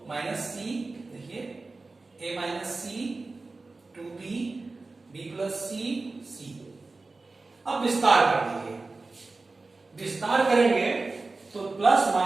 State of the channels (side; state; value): left; quieter; 3.6 dB